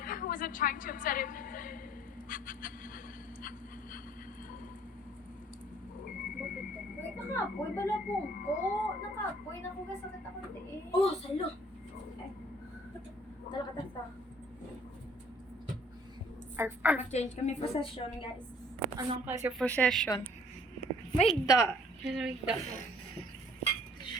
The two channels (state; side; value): normal; both; correlation 0.57